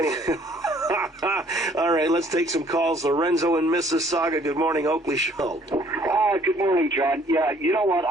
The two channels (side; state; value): both; normal; correlation 0.60